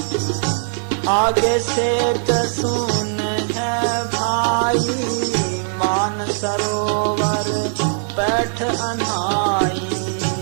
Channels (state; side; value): silent; left; 63 dB below the other